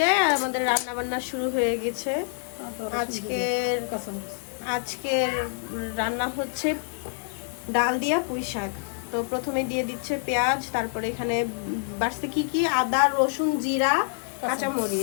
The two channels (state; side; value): silent; right; digital silence